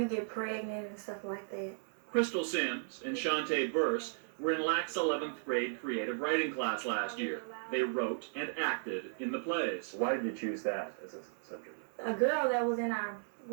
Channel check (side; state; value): left; silent; digital silence